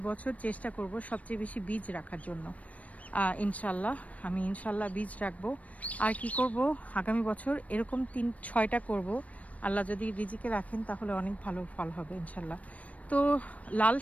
চেষ্টা করব সবচেয়ে বেশি বীজ রাখার জন্য। ইনশাল্লাহ আমি ইনশাল্লাহ বীজ রাখবো। আর কি করব, আগামী বছর এরকম 3-6টা করব, আল্লাহ যদি রিজিকে রাখেন তাহলে অনেক ভালো ফল হবে ইনশাল্লাহ। তো লাল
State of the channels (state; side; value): late; right; 0.068 ms